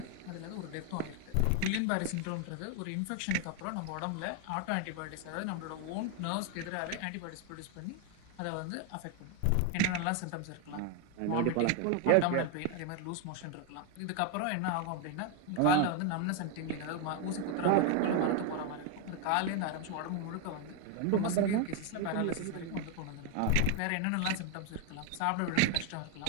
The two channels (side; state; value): both; different; correlation 0.01